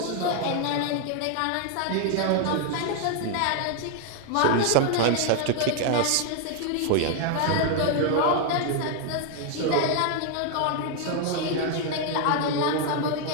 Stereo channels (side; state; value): both; different; correlation 0.00